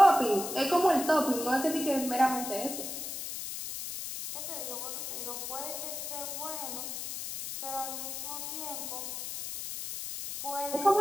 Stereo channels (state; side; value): noise; left; hiss, 6 dB below the sound